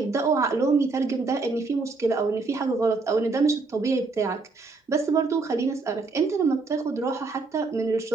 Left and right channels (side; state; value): left; quieter; 3.9 dB